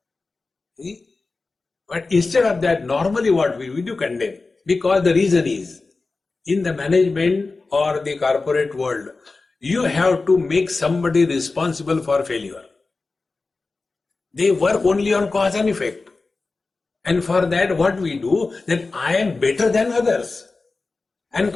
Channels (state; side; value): quieter; right; 3.8 dB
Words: See? But instead of that, normally what we do condemn, because the reason is, in the management or the corporate world, you have to make somebody responsible for failure. They work only on cause and effect. And for that, what we do, that I am better than others. And